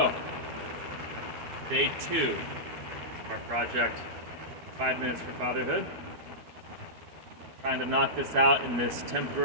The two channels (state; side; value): late; left; 12 ms